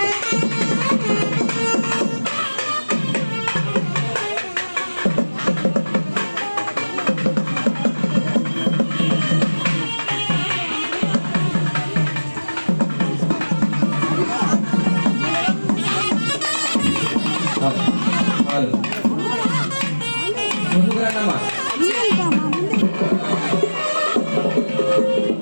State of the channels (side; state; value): both; inverted; correlation -1.00